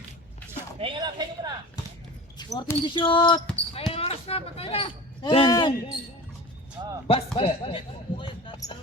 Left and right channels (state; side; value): normal; both; correlation 0.36